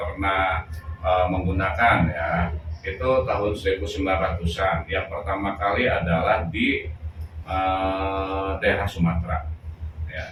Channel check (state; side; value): identical; both; correlation 1.00